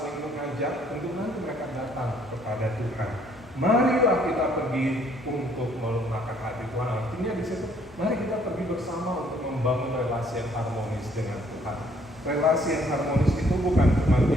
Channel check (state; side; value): normal; both; correlation 0.64